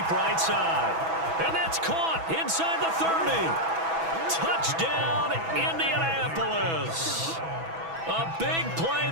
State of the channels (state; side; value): late; left; 6.1 ms